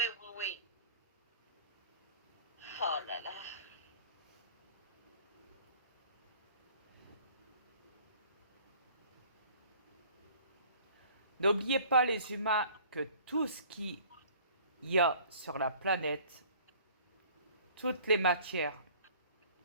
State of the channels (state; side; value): inverted; both; correlation -0.51